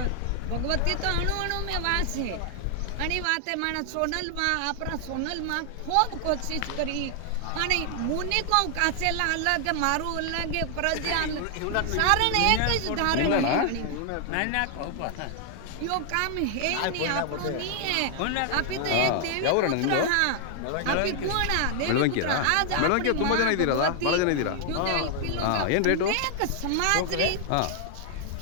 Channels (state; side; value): different; both; correlation 0.00